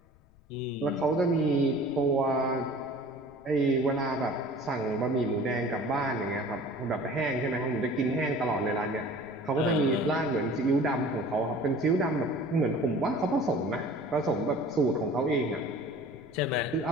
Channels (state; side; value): noise; left; rumble, 29 dB below the sound